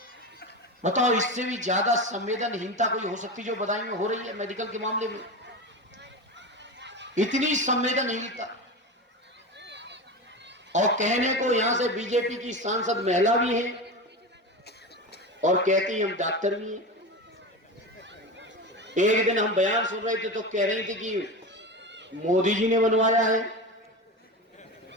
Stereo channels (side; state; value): both; normal; correlation 0.24